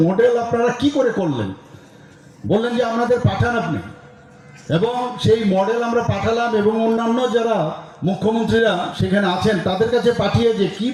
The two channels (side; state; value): both; identical; correlation 1.00